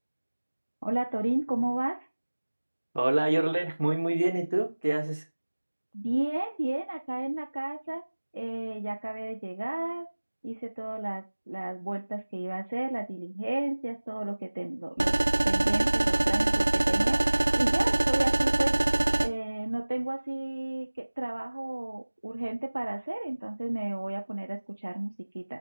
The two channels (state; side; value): inverted; both; correlation -1.00